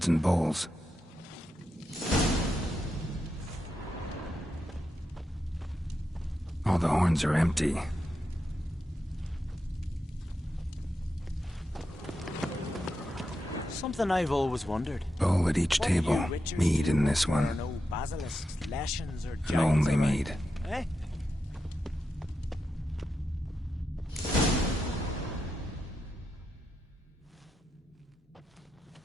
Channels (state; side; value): normal; both; correlation 0.87